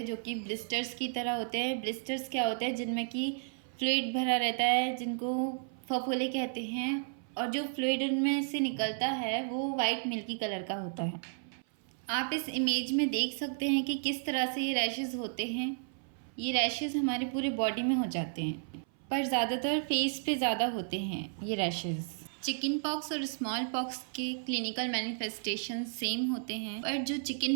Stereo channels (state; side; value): silent; left; 56 dB below the other